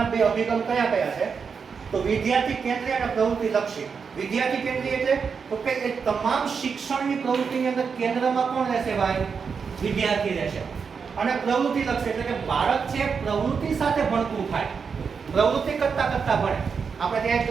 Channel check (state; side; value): quieter; left; 5.9 dB